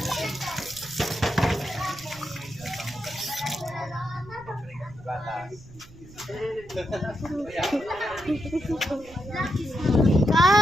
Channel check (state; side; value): noise; right; rumble, 20 dB below the sound